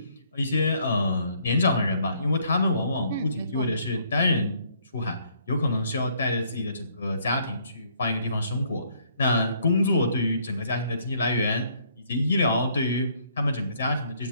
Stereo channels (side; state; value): both; inverted; correlation -0.66